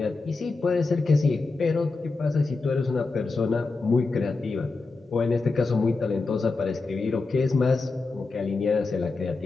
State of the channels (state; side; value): quieter; right; 3.8 dB